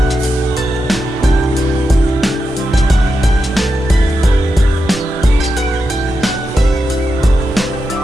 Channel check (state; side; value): normal; both; correlation 0.88